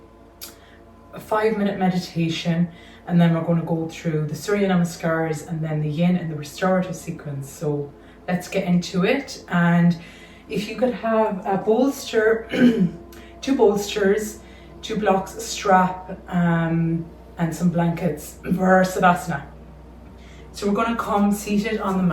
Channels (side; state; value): both; identical; correlation 1.00